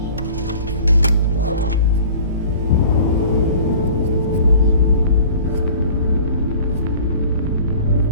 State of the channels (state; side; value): inverted; both; correlation -0.46